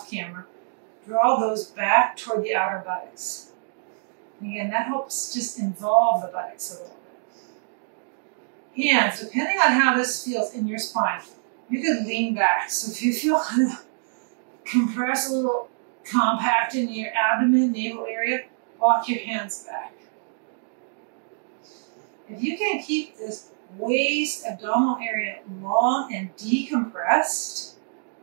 camera. Draw those back toward the outer buttocks. And again, that helps just involve the buttocks a little bit. Hands, depending on how this feels in your spine, you could lean back. So if you feel kind of compressed, a little compact in your abdomen, navel area, walk your hands back. If you can keep this waist, abdominal area long and decompressed,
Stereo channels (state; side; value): silent; left; digital silence